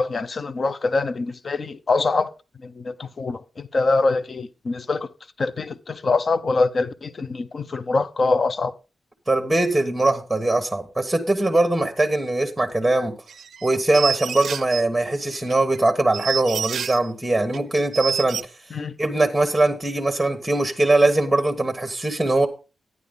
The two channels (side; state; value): both; normal; correlation 0.93